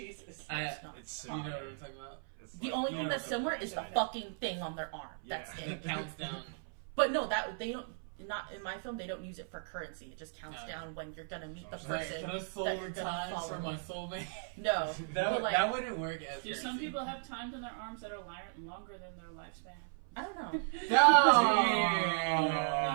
It's not. It's You know what I'm talking about? It's The like- only you thing know that's what similar I'm is the talking fucking thing on their arm. That's Yeah. it. It counts down. But no, that they don't. Not in my film. They don't use it for currency. It just counts No. down when you're gonna meet the Right, person. Can I soul that you're gonna time follow. for my soulmate? No, but like that wouldn't work as Do some people have times in their arms that are longer than their lifespan? I don't know. No!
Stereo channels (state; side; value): silent; left; 54 dB below the other